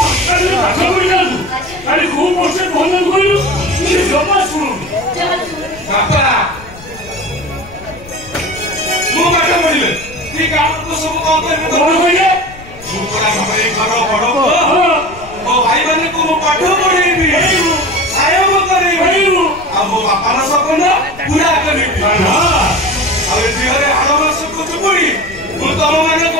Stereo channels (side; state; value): left; noise; rumble, 19 dB below the sound